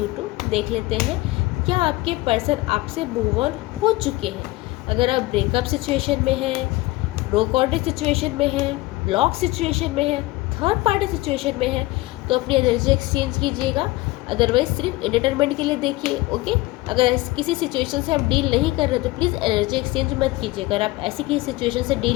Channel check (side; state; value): right; quieter; 20.2 dB